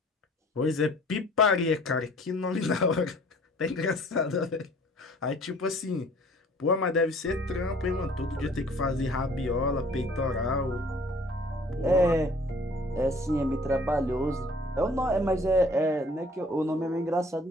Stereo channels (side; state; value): both; normal; correlation 0.53